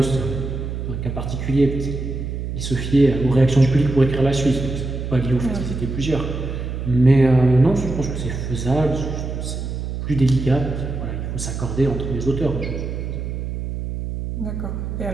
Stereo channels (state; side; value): noise; right; hum, 5 dB below the sound